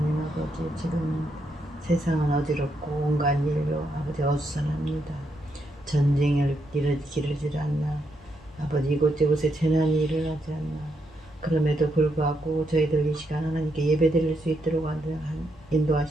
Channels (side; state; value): both; normal; correlation 0.79